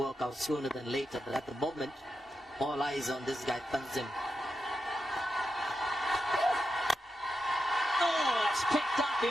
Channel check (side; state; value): both; normal; correlation 0.87